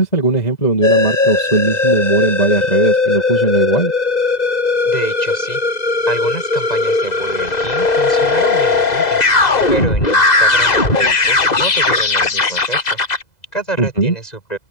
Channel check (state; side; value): late; right; 2.0 ms